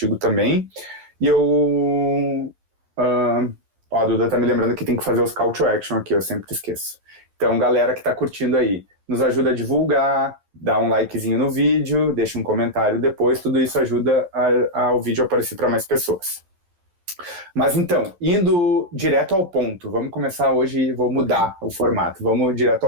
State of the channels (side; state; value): left; late; 11 ms